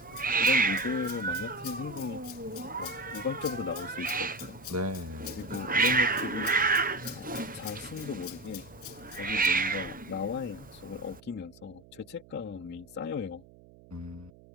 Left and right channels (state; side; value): noise; right; hum, 23 dB below the sound